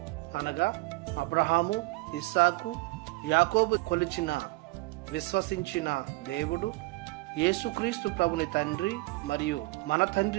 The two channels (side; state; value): left; quieter; 22.8 dB